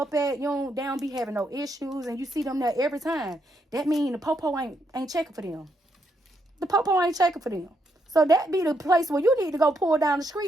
at, they don't be having no issues, and you see them there every time. That mean the popo ain't checking for them. The popo ain't checking for them. So that be the place where you need to go pull down the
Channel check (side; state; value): both; normal; correlation 0.77